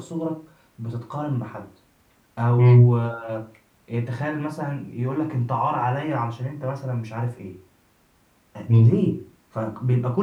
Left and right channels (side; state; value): both; identical; correlation 1.00